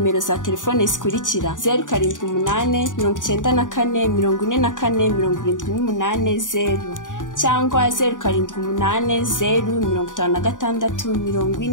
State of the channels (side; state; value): right; late; 0.87 ms